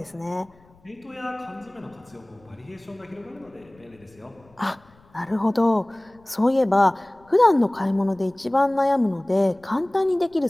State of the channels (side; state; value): left; noise; rumble, 29 dB below the sound